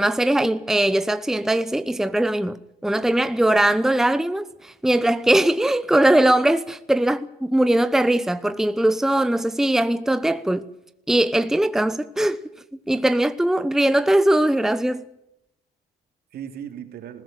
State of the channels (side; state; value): both; normal; correlation 0.96